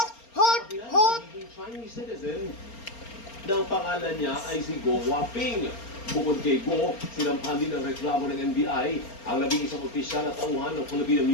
hot, hot. Naging Chinese citizen ng pangalan niya ay si Go Waping. Bukod kay Go, sinampahan din ang reklamo ng NBI ang 11 opisyal at tauhan ng Philippine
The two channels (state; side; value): late; right; 4.3 ms